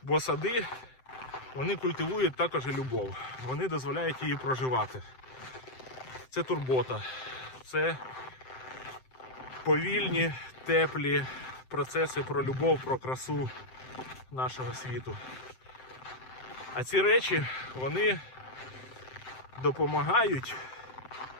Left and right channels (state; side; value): late; right; 7.7 ms